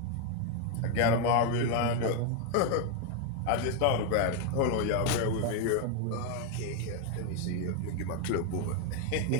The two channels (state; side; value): different; both; correlation 0.01